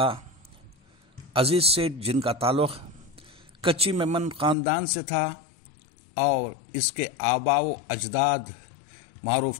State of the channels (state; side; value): drops out; right; at 4.5 s